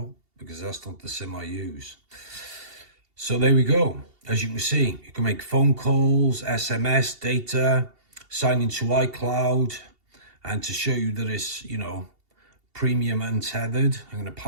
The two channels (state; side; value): late; left; 2.7 ms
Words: because that's not the SIM I use. So there we go. As you can see, you can make phone calls, SMS, data, sign into iCloud, and to show you that it's, you know, premium untethered, I'm going to